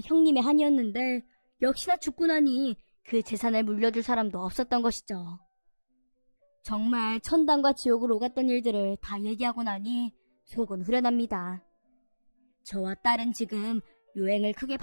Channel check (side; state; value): both; inverted; correlation -1.00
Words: 형님의 한이었는데 역시나 죽고 나니 그 재산을 물려줄 사람도 없었던 것이죠. 정말 천당과 지옥을 오갔던 일들을 다 얘기하고 나니 속은 후련합니다. 저와 딸은 지금 유행을 크게